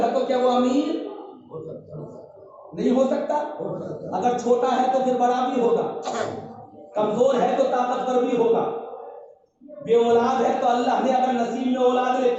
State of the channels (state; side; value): identical; both; correlation 1.00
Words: تو کیا وہ امیر نہیں ہو سکتا؟ اگر چھوٹا ہے تو پھر بڑا بھی ہوگا، کمزور ہے تو طاقتور بھی ہوگا، بے اولاد ہے تو اللہ نے اگر نصیب میں اولاد